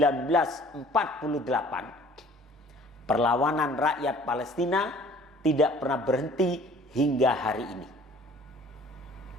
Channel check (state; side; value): normal; both; correlation 0.52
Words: perlawanan rakyat Palestina tidak pernah berhenti hingga hari ini,